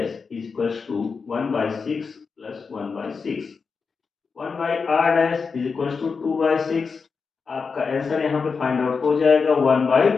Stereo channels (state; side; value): quieter; right; 5.1 dB